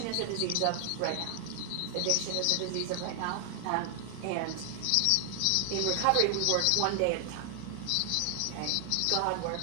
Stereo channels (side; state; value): both; different; correlation 0.00